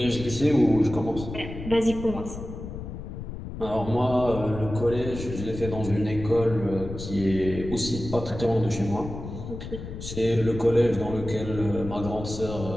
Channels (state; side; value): noise; left; rumble, 9 dB below the sound